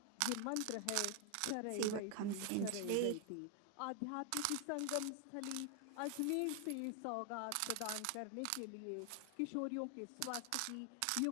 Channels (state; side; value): different; both; correlation 0.00